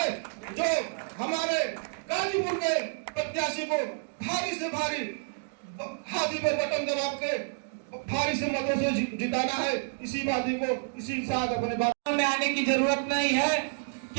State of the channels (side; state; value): left; silent; digital silence